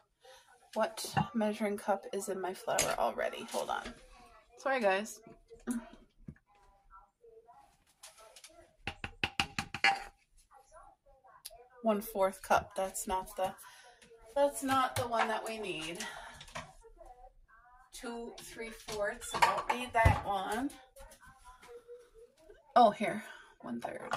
What measuring cup is in my flour already? Hold on. Sorry, guys. One-4 cup. That's not the one that we need. 2 3/4. I don't need that one. Oh, here. 1/3.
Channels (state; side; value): identical; both; correlation 1.00